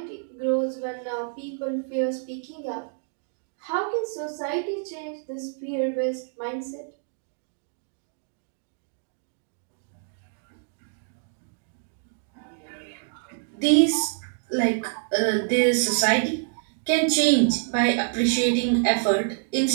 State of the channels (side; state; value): left; silent; digital silence